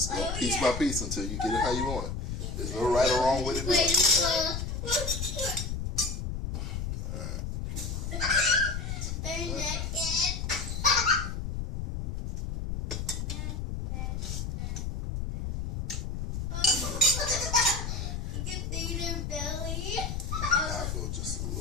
go piece by piece until you get it how you want it. There's no right or wrong with it. I'll go just a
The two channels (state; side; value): noise; left; rumble, 3 dB below the sound